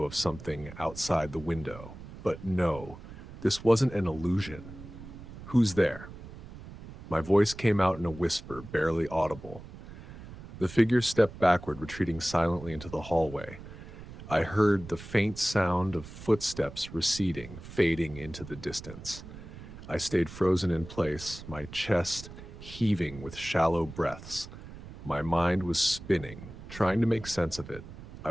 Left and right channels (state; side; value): noise; right; rumble, 14 dB below the sound